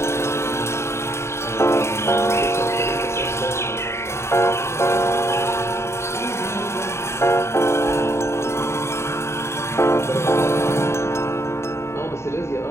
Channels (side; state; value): right; late; 0.13 ms